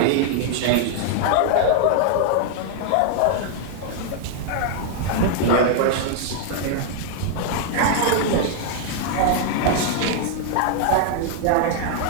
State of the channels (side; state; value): both; different; correlation 0.00